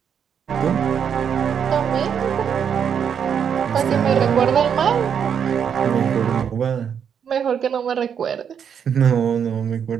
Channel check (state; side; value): quieter; left; 7.7 dB